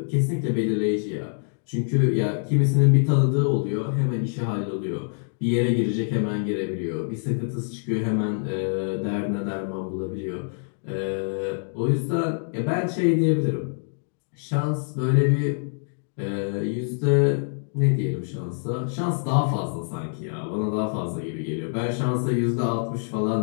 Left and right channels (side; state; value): right; silent; digital silence